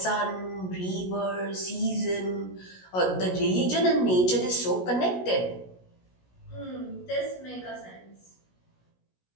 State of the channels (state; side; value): late; right; 16 ms